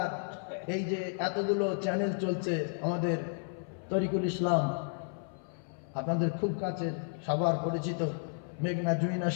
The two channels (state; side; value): silent; right; 56 dB below the other